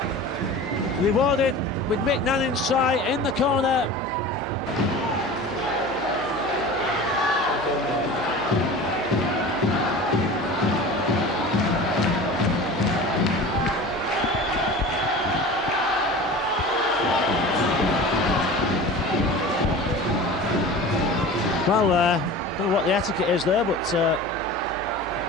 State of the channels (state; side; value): normal; both; correlation 0.36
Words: rewarded with Mick Nanning's try in the corner. Well, don't know what the etiquette is there, but